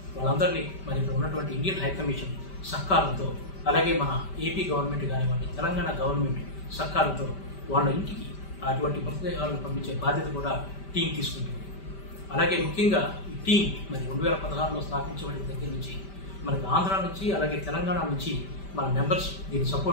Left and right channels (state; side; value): late; right; 5.1 ms